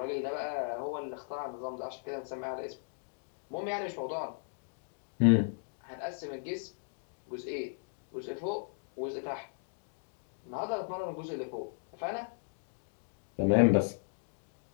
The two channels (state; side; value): silent; right; digital silence